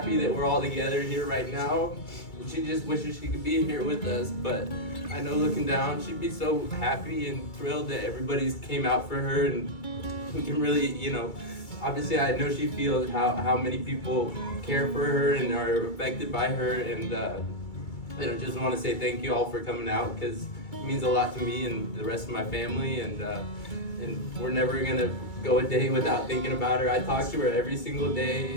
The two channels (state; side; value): late; right; 2.2 ms